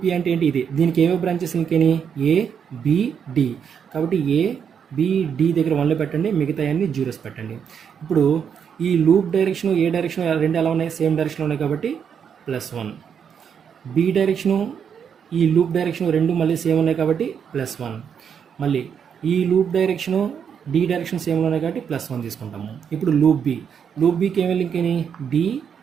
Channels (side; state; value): left; quieter; 7.5 dB